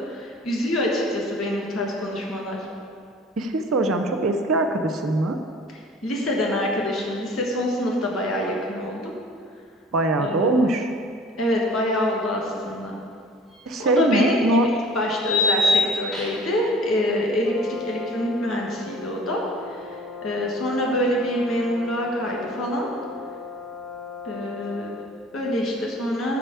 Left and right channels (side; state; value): both; normal; correlation 0.48